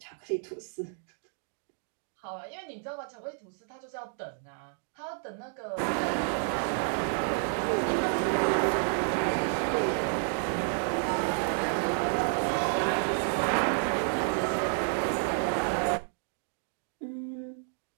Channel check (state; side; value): silent; left; 57 dB below the other